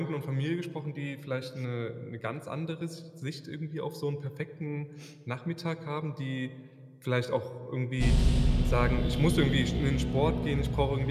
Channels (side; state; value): both; identical; correlation 1.00